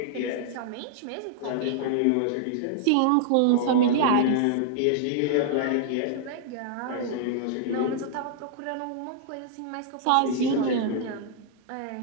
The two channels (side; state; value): both; different; correlation -0.01